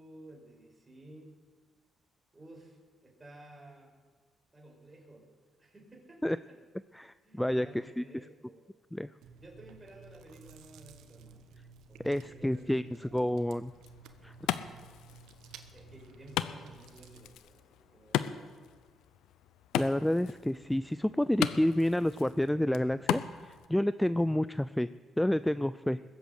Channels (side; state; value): both; normal; correlation 0.93